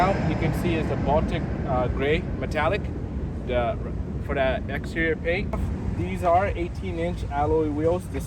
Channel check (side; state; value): both; identical; correlation 1.00